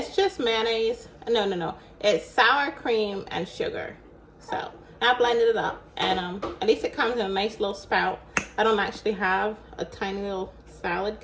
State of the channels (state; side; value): identical; both; correlation 1.00